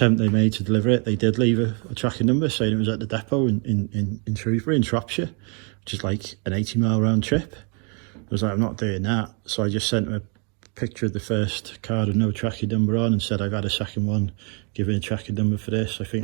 they made to deliver it, they did leave a tracking number saying it was at the depot in Shrewsbury in Shropshire, which is like an 80-mile round trip. I was like, I'm not doing that, so I just sent them a picture of the first card with no tracking number on and said I've had a second one, give me a tracking number for this. I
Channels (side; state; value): left; quieter; 36.5 dB